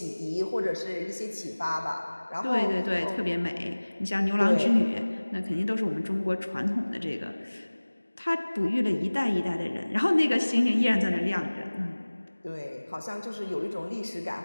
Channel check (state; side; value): inverted; both; correlation -1.00